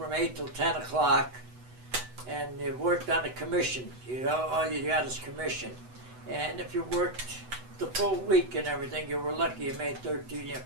8 till 10 o'clock. And you worked on a commission. You know, all you got is commission. And if you worked the full week and everything, you were lucky you made $13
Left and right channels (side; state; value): left; late; 8.0 ms